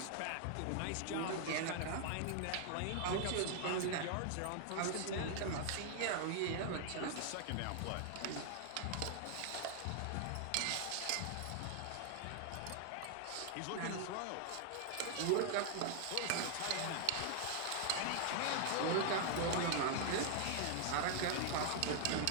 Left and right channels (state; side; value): different; both; correlation 0.00